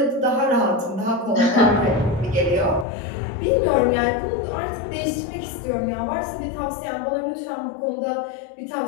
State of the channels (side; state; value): right; drops out; at 2.9 s